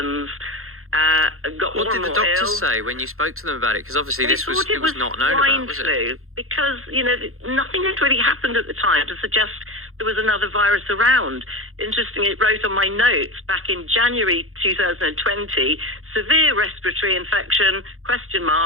got what more and did the more doctors ill. say when you spoke to them about it? Because obviously They thought it was not known about, was swine it? flu, because, you know, nothing had really happened at the time to suggest there was another virus around. Interestingly, it wrote on my notes back in January 2020, severe respiratory infection,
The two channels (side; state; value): left; late; 0.62 ms